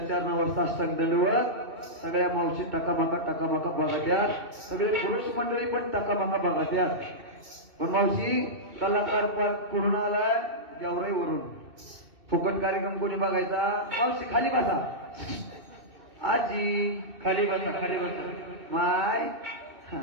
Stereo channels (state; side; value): late; left; 2.7 ms